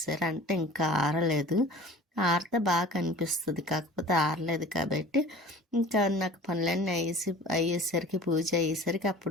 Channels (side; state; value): both; normal; correlation 0.43